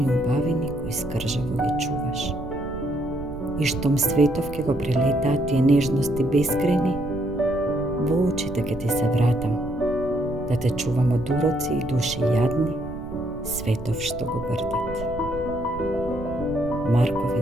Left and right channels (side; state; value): right; noise; rumble, 13 dB below the sound